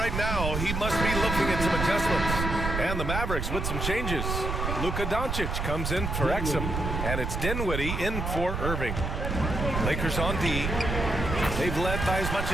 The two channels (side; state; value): right; noise; rumble, 2 dB below the sound